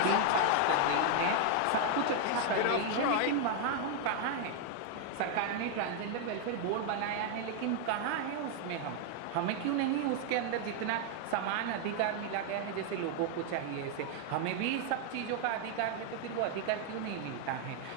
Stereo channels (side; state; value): both; different; correlation 0.00